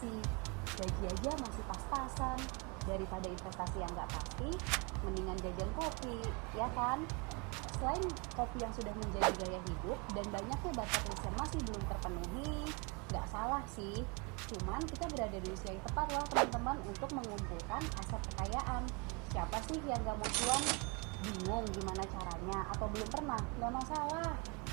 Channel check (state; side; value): quieter; left; 30.5 dB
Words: gaji aja masih pas-pasan. Daripada investasi yang nggak pasti, mendingan jajan kopi, ya kan? Selain kopi yang sudah menjadi gaya hidup dan banyaknya bucket list yang masih belum terpenuhi, nggak salah sih. Cuman kita berada di usia yang tepat loh teman-teman untuk mengumpulkan aset kekayaan. Siapa sih yang nggak mau cuan? Bingung gimana caranya atau belum pernah? Nggak masalah.